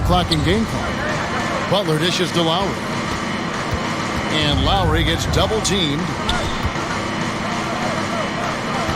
clock and game clock. Butler dishes to Lowry. And Lowry gets double-teamed.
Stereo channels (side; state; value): both; identical; correlation 1.00